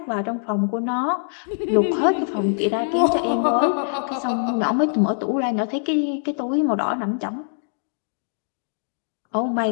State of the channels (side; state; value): right; silent; digital silence